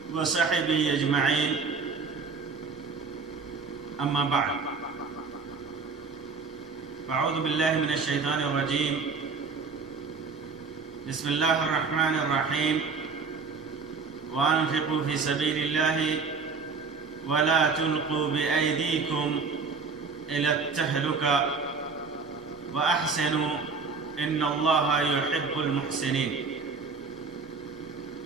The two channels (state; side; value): quieter; left; 4.9 dB